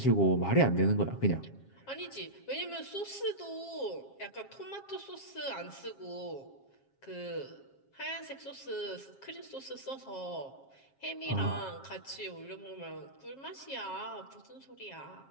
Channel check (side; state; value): right; late; 7.4 ms